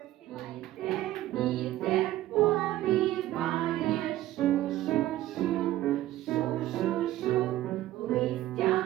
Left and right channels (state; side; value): quieter; left; 14.6 dB